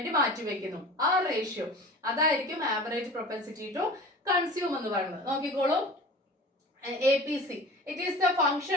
മാറ്റി വെക്കുന്നു, ആ റേഷ്യോ, അതായിരിക്കും ആവറേജ് പ്രൊപ്പൻസിറ്റി ടു കൺസ്യൂം എന്ന് പറയുന്നത്. നോക്കിക്കോളൂ, APC, it is the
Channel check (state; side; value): normal; both; correlation 0.38